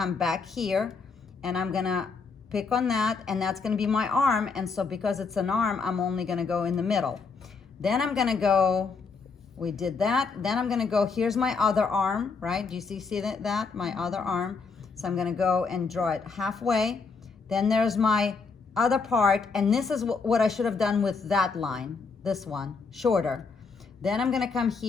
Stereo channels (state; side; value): quieter; right; 4.8 dB